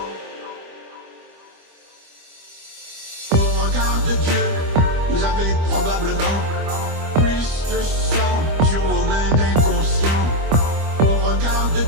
Au regard de Dieu, vous avez probablement plus de sang sur vos mains d'inconscients. Au regard de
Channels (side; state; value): left; late; 25 ms